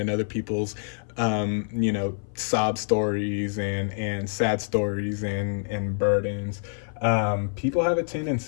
other people's, sob stories and sad stories and burdens. People have a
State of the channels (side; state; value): right; silent; 56 dB below the other